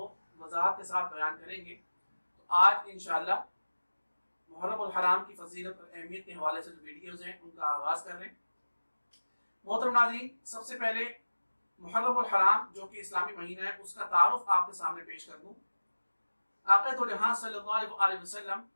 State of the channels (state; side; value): inverted; both; correlation -1.00